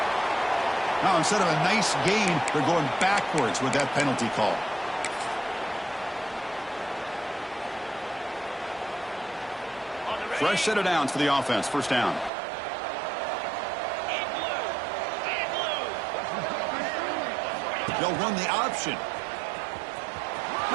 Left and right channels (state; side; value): drops out; left; at 12.3 s